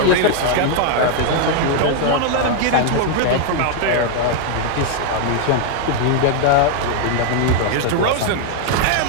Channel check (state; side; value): different; both; correlation 0.00